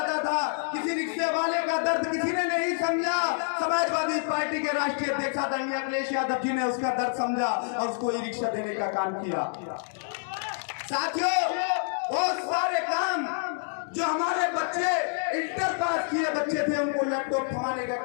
था। किसी रिक्शे वाले का दर्द किसी ने नहीं समझा। समाजवादी पार्टी के राष्ट्रीय अध्यक्ष आदरणीय अखिलेश यादव जी ने उसका दर्द समझा और उसको ई रिक्शा देने का काम किया। साथियों, बहुत सारे काम जो हमारे बच्चे इंटर पास किए बच्चे थे उनको लैपटॉप थमाने का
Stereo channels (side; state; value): right; silent; digital silence